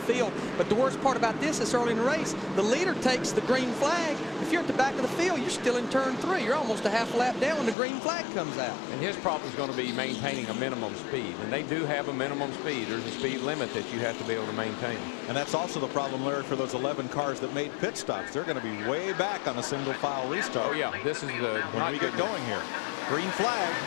But the worst part about this is early in the race, the leader takes the green flag. If you're at the back of the field, you're still in turn 3. You're almost a half lap down when the green flag comes out. And his problem is going to be maintaining a minimum speed. And they do have a minimum speed. There's a speed limit that you have to be able to maintain. And that's also the problem, Larry, for those 11 cars that made pit stops. They're going to be way back on a single file restart. Oh, yeah. This is when we get going here. Green flag.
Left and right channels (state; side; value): drops out; right; at 7.8 s